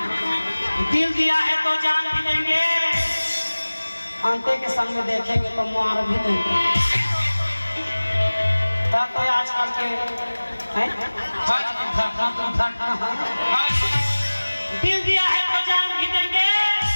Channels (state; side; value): inverted; both; correlation -1.00